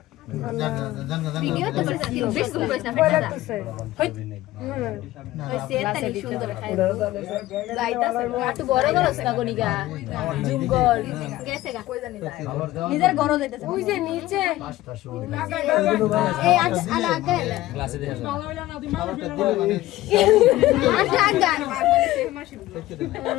ভিডিও তো বেশ করিস না ফেটা ওই সেটাই সুন্দর খাই যাইতাছে একটু বড় করছ না গনিগা জুম কর গেছে গা কই জানি যায় নিজের ঘর যাইতাছে ওই যে নিচে এই আলা আগে ক্লাসে দেখা আলা আগে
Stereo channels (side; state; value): right; quieter; 16.2 dB